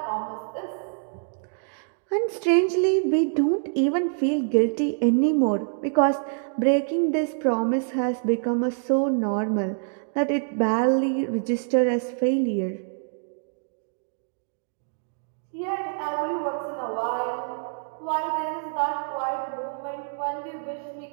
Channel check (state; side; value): silent; left; digital silence